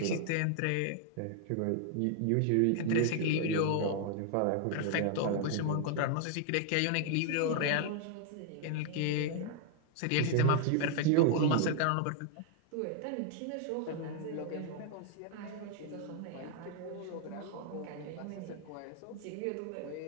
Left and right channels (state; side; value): different; both; correlation 0.00